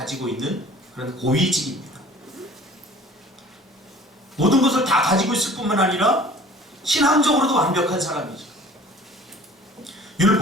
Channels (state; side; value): normal; both; correlation 0.48